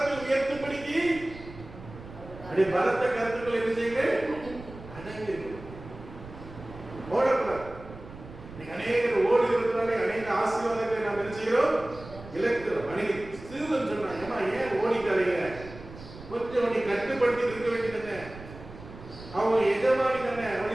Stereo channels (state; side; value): noise; right; rumble, 16 dB below the sound